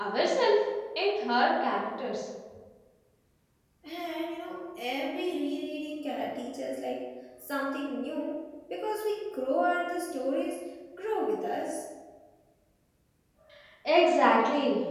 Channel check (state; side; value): identical; both; correlation 1.00